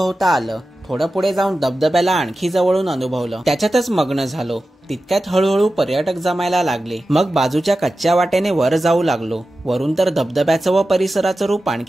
आलं। थोडं पुढे जाऊन धबधब्याला आणखी जवळून अनुभवलं। त्याच्यातच मग्न झालो। तितक्यात हळूहळू पर्यटक जमायला लागले। मग बाजूच्या कच्च्या वाटेने वर जाऊ लागलो। वरून तर धबधब्याचं व परिसराचं रूप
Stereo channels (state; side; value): normal; both; correlation 0.94